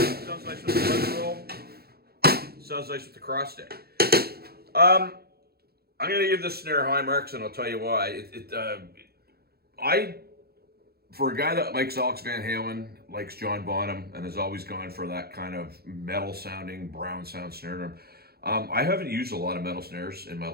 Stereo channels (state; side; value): late; left; 0.46 ms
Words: sounds nice with the buzz roll. It sounds nice with the cross stick. I'm going to give this snare high marks, and I'll tell you why. For a guy that likes Alex Van Halen, likes John Bonham, and has always gone for that kind of metal-sounding, brown sound snare drum, I haven't used a lot of metal snares in my